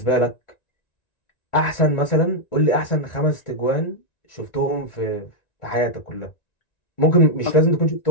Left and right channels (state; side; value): late; right; 1.9 ms